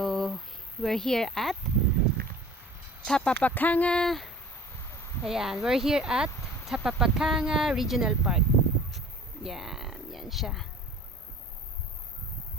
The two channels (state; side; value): normal; both; correlation 0.45